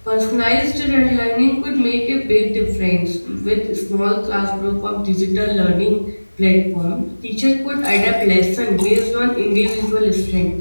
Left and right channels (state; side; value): inverted; both; correlation -1.00